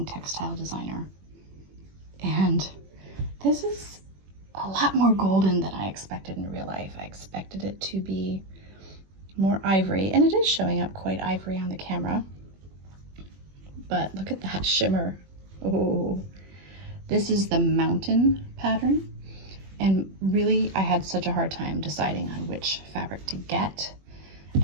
textile designer. And this is a lot more golden than I expected in real life. I expected it to be more ivory, and it is showing up quite ivory on the camera. But look at that shimmer. Oh, this is the mountain pattern. And really, I had such a hard time deciding on which fabric to get. And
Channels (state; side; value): late; left; 21 ms